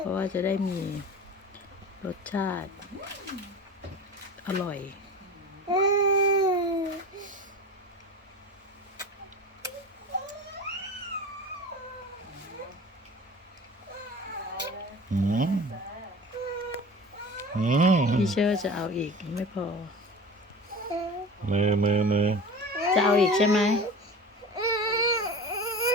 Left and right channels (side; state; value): both; normal; correlation 0.35